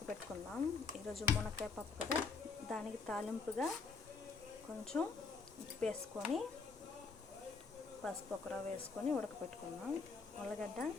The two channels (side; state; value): right; quieter; 4.7 dB